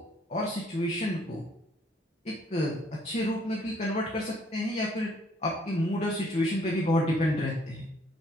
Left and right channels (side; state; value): both; normal; correlation 0.64